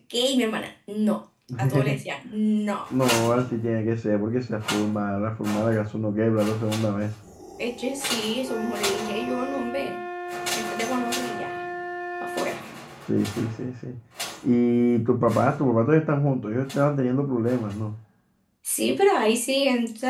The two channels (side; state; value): both; identical; correlation 1.00